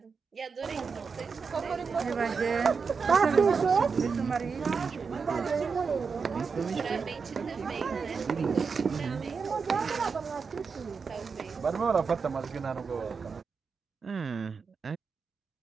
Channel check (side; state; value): left; quieter; 5.3 dB